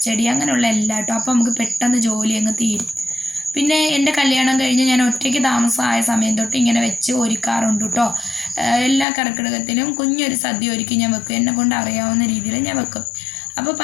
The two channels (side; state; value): right; drops out; at 9.1 s